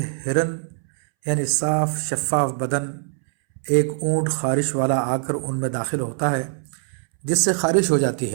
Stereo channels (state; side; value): silent; left; 63 dB below the other